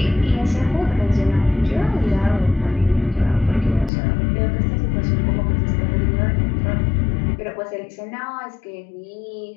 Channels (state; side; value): drops out; right; at 3.9 s